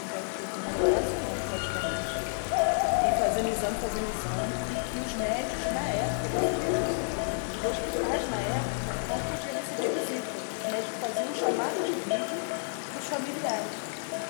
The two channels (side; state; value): right; silent; digital silence